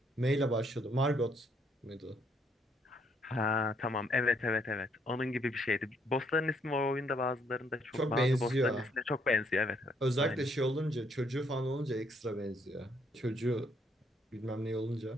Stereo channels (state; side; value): normal; both; correlation 0.70